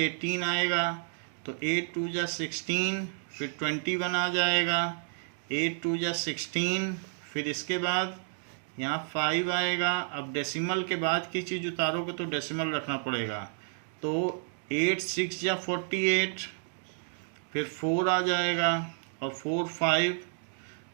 आएगा तो 8 2 जा 16, फिर 21 आ जाएगा, 8 2 जा 16, फिर इसके बाद यहाँ 5 आएगा। अब डेसिमल के बाद की चीज़ उतारोगे तो डेसिमल रखना पड़ेगा, तो 8 6 जा 48, फिर 4 आ जाएगा और 4 5,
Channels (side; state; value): left; silent; digital silence